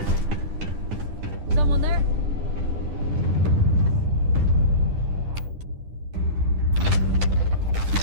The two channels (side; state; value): left; late; 10 ms